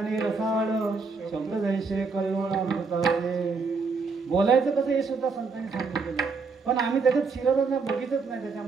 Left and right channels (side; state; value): left; quieter; 4.6 dB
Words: रसाळ, शब्द जैसे कल्लोळ अमृताचे. बोलायचं कसं हे सुद्धा संतांनी सांगितलेलं. पण आम्ही त्याच्यात शिरतच नाही, बघितच नाही